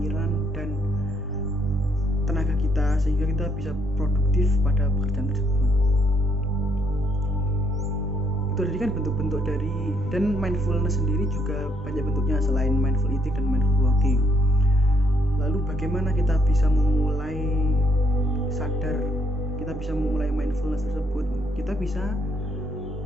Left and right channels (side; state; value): both; normal; correlation 0.71